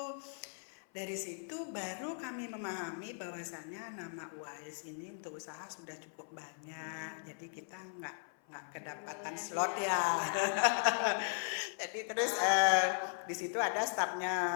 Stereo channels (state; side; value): silent; right; 53 dB below the other